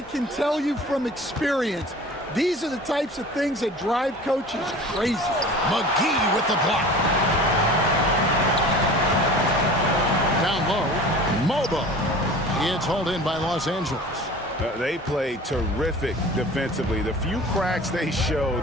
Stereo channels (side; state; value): both; normal; correlation 0.41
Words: can tell you from experience, these are the types of things that drive coaches crazy. McGee with the block. Down low, Mobo. It's hauled in by Los Angeles. They played terrific defensively. The few cracks they